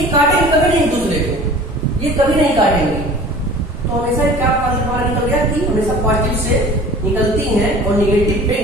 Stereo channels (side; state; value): both; normal; correlation 0.44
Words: काटेंगे कभी नहीं एक दूसरे को, ये कभी नहीं काटेंगे। तो हमेशा क्या हमारा निकल गया कि हमेशा पॉजिटिव से निकलती हैं और निगेटिव पे